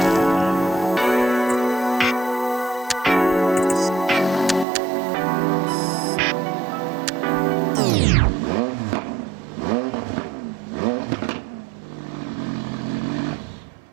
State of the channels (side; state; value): left; drops out; at 4.7 s